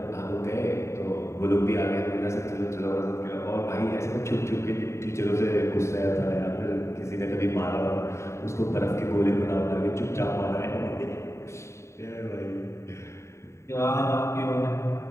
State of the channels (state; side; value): late; right; 0.14 ms